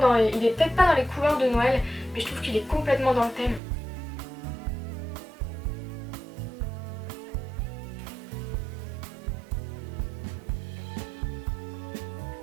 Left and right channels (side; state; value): left; drops out; at 3.6 s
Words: il est peut-être pas dans les couleurs de Noël mais je trouve qu'il est complètement dans le thème.